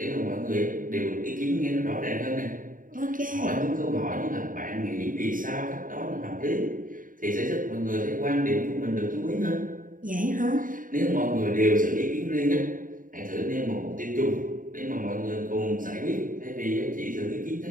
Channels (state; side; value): late; left; 0.39 ms